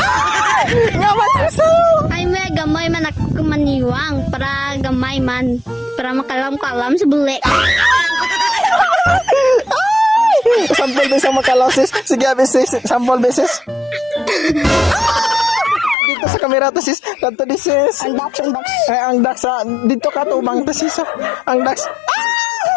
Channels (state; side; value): drops out; right; at 16.0 s